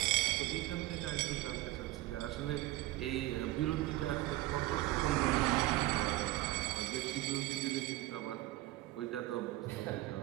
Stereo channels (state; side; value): quieter; left; 17.5 dB